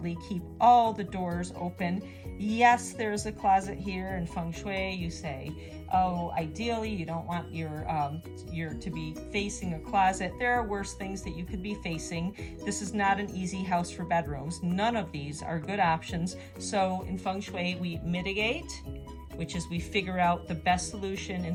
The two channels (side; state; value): both; identical; correlation 1.00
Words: keep all the doors open. Yes, there's a closet here in Feng Shui. You say, oh, ideally you don't want your to be facing a closet. There are worse things that you could be facing. This is not an easy house for bedrooms. None of these are good options. So in Feng Shui, we mitigate, which is we figure out the best solution in